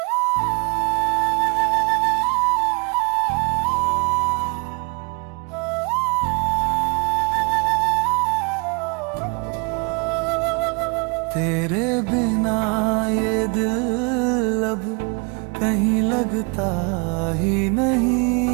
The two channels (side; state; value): left; quieter; 33.0 dB